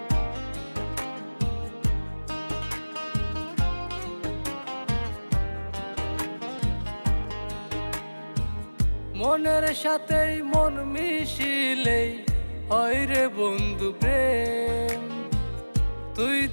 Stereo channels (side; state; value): both; inverted; correlation -1.00